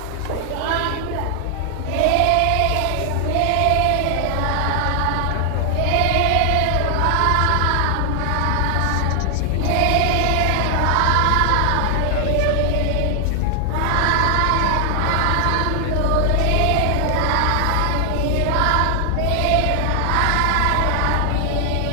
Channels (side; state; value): both; different; correlation 0.00